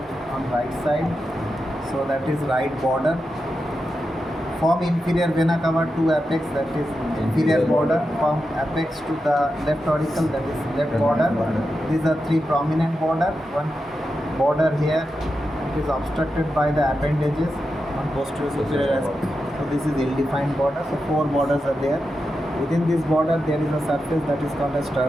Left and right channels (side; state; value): both; normal; correlation 0.89